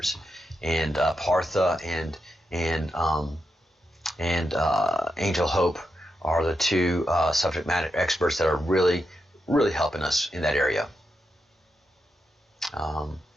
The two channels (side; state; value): both; normal; correlation 0.85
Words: And Partha and Angel Hope are the two subject matter experts that are really helping us in that area.